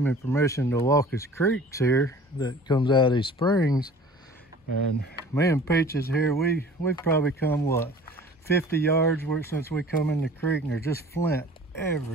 me permission to walk his creeks here that comes out of these springs. And me and Peaches here, we've probably come, what, 50 yards since we come in the creek, and there's just flint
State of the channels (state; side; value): normal; both; correlation 0.46